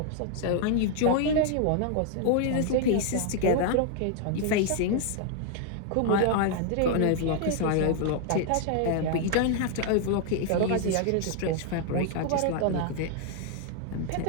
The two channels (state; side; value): different; both; correlation 0.00